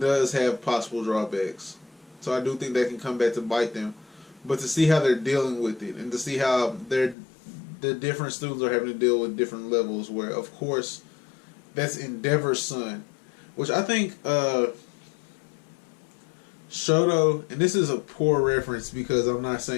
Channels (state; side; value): drops out; right; at 7.2 s